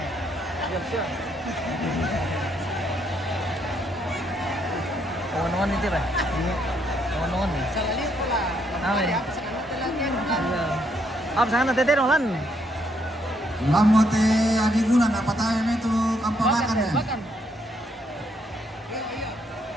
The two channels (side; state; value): both; normal; correlation 0.73